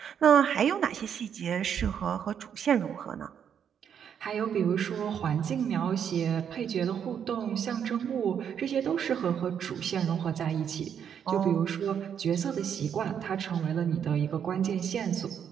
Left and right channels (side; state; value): left; quieter; 8.3 dB